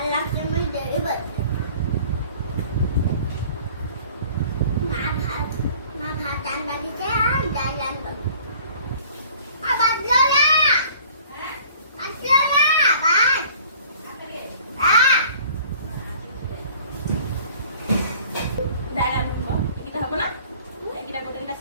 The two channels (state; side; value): inverted; both; correlation -0.51